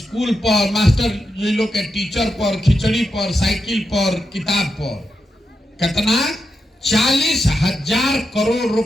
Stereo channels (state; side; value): normal; both; correlation 0.86